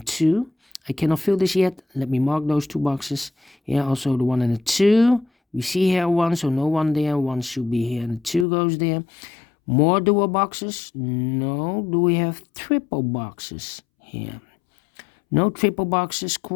2. I cannot fill this yet. Let me mark those 2 boxes. Here also the 1 and the 2. We see here 1, so no 1 there. 1 should be here and the 2 goes there. More dual boxes? No. Do we have triple boxes here? No triple boxes.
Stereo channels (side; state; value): right; drops out; at 8.5 s